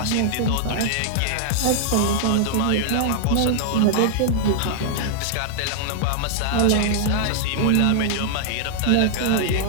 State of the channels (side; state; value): both; different; correlation -0.01